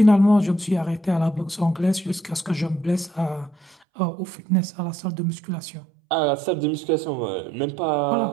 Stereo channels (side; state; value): left; drops out; at 3.8 s